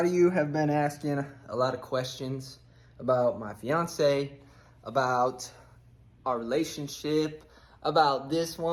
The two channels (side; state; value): both; identical; correlation 1.00